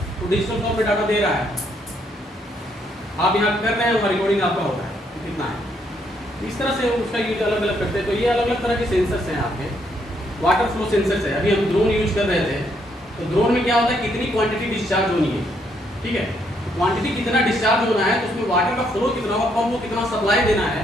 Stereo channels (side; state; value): both; normal; correlation 0.73